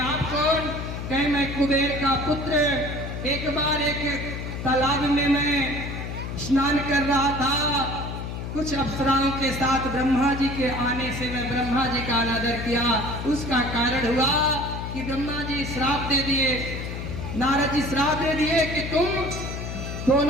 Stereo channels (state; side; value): noise; left; hum, 6 dB below the sound